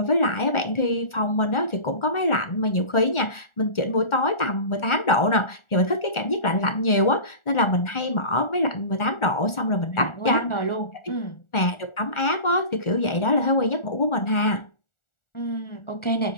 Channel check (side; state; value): right; late; 1.4 ms